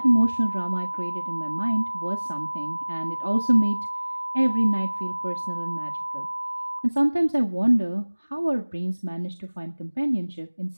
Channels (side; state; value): both; inverted; correlation -1.00